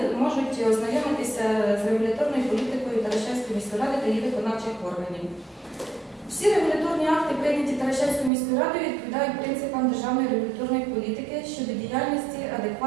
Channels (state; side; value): drops out; left; at 8.3 s